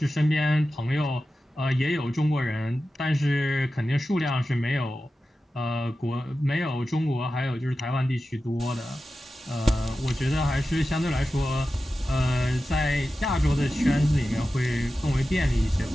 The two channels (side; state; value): both; normal; correlation 0.93